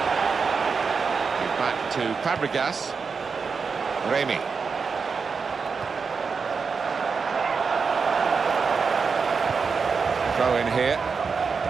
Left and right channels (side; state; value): left; quieter; 5.3 dB